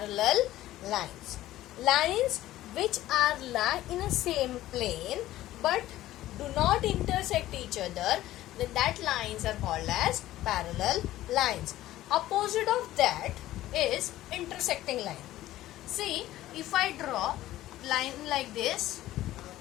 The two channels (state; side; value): quieter; right; 14.9 dB